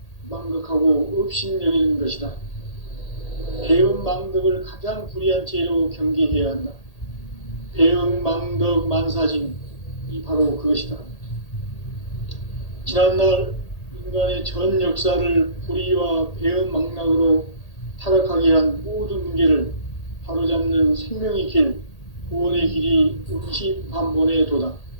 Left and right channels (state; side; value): late; right; 1.8 ms